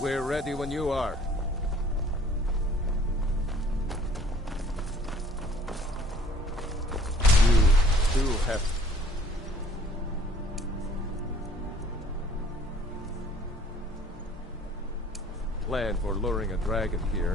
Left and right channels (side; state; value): both; normal; correlation 0.55